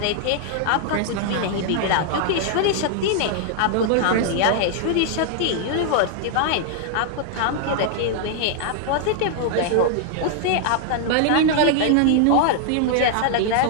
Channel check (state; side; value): different; both; correlation -0.01